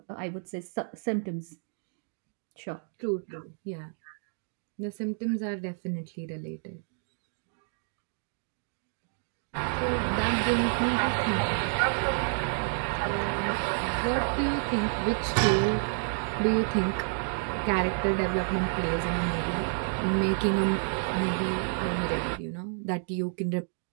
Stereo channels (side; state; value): left; silent; digital silence